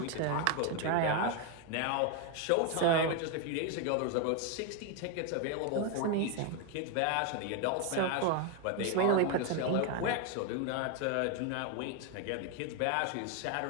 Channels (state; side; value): different; both; correlation 0.01